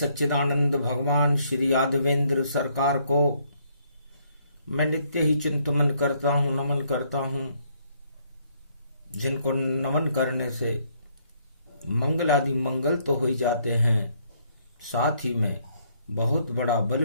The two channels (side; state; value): both; inverted; correlation -0.69